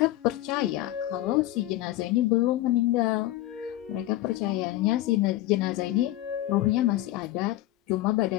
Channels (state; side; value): quieter; right; 15.5 dB